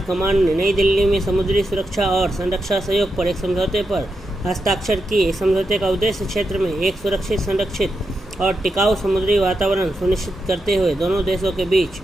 कमांड ने नई दिल्ली में समुद्री सुरक्षा और संरक्षा सहयोग पर एक समझौते पर हस्ताक्षर किए। इस समझौते का उद्देश्य क्षेत्र में एक सुरक्षित, संरक्षित और टिकाऊ समुद्री वातावरण सुनिश्चित करते हुए दोनों देशों के बीच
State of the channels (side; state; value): both; normal; correlation 0.86